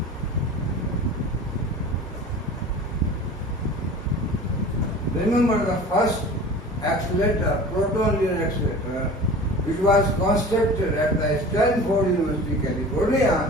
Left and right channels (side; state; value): both; normal; correlation 0.39